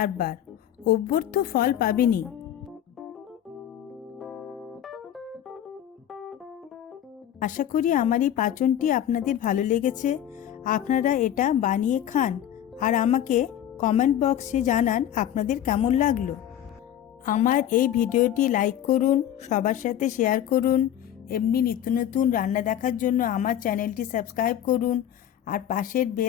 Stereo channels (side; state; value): right; quieter; 10.9 dB